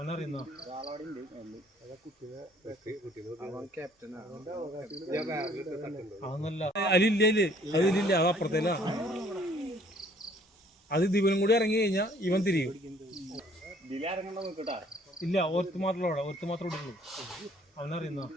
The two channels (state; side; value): normal; both; correlation 0.59